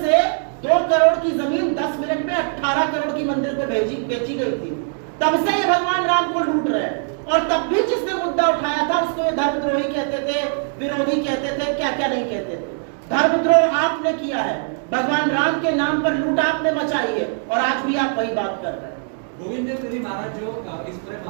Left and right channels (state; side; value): silent; left; 62 dB below the other